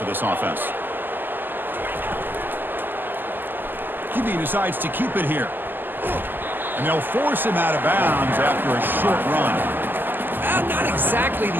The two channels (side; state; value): left; late; 0.091 ms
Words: this offense? QB decides to keep it here. And they'll force him out of bounds after a short run. Not exactly